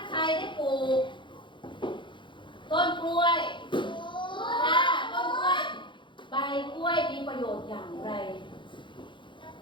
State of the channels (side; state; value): right; late; 0.23 ms